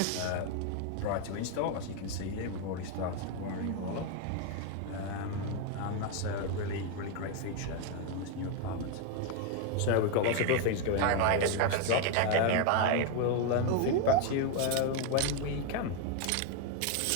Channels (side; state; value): both; different; correlation 0.01